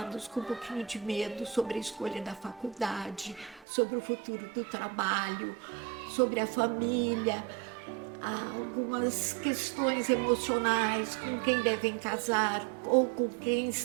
com um pouquinho de medo sobre a escolha da faculdade, sobre o futuro do trabalho, sobre a família, algumas questões emocionais, com quem devem casar ou com quem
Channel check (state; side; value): drops out; left; at 3.7 s